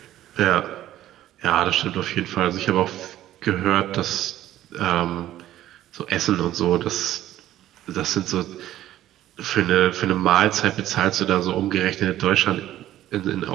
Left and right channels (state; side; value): quieter; left; 13.3 dB